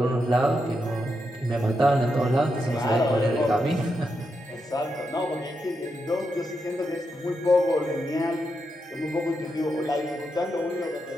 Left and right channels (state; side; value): normal; both; correlation 0.84